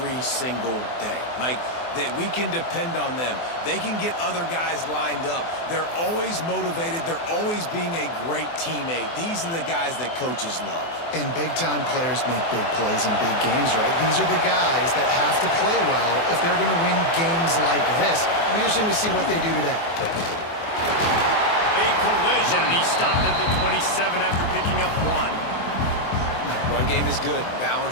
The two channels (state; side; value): late; right; 24 ms